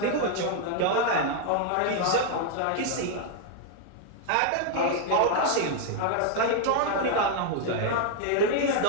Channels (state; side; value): different; both; correlation 0.00